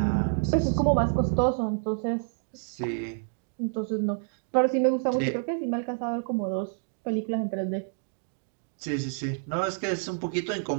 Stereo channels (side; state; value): left; silent; digital silence